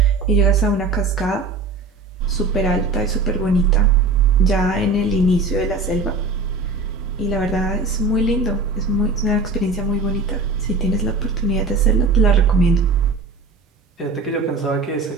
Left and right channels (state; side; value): quieter; left; 3.6 dB